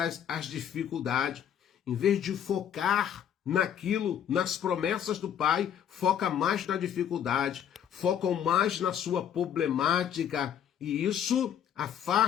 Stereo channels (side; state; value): right; quieter; 9.2 dB